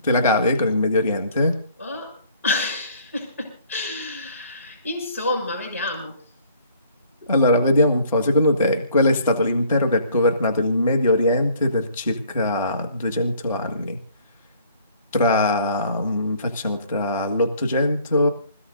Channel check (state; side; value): inverted; both; correlation -0.58